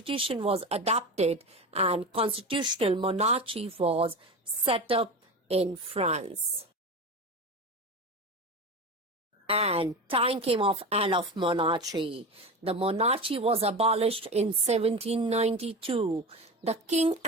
was adopted and constitutional monarchy was set up in France. and time came of end of monarchy. The monarchy was abolished in 1792. The king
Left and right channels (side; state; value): both; normal; correlation 0.25